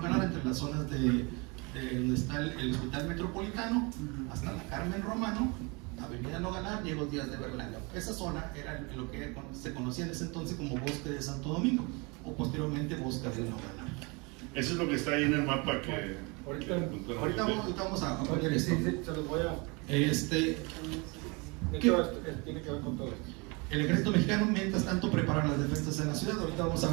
entre las zonas de donde está el Hospital Metropolitano, hasta la Carmen Romano, Avenida Nogalar, Diego Díaz de Berlanga. Esa zona era lo que se conocía en ese entonces como Bosque de Santo Domingo, o posteriormente Bosque de Nogalar. Eso es lo que está ahí en el mapa que... Ahorita vamos a poner esto. Sí, se los voy a... tiene que ver con todo esto. El ejército mexicano, mientras tanto, prepara las defensas en la ciudad. Ahorita vamos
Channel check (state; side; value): quieter; left; 28.9 dB